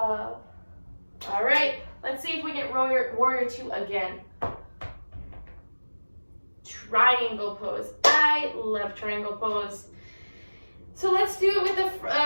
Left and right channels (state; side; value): inverted; both; correlation -1.00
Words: All right, let's see if we get warrior 2 again. Triangle pose. I love triangle pose. So let's do it with